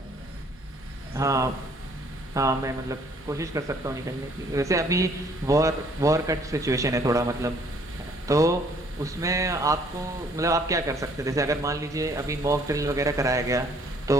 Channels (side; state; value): both; normal; correlation 0.61